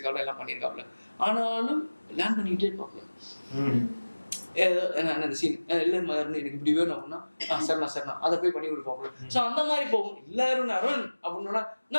எல்லாம் பண்ணியிருக்காப்ல. ஆனாலும் லேர்ன் பண்ணிக்கிட்டே இருப்பாப்ல. அந்த சீன் இல்லை அருண் எனக்கு இப்படி வேணும் அப்படின்னா சரிண்ணா அதை போய் பண்ணி கொடுப்பாப்ல. ஸோ அந்த மாதிரி போகும். இல்லை அருண் அப்படின்னா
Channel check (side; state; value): both; inverted; correlation -1.00